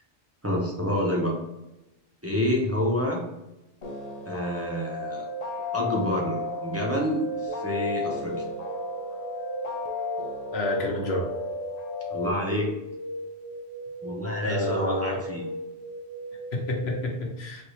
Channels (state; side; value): normal; both; correlation 0.08